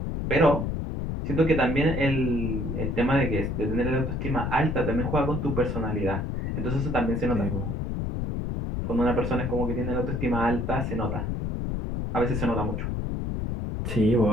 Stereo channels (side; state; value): left; noise; rumble, 2 dB below the sound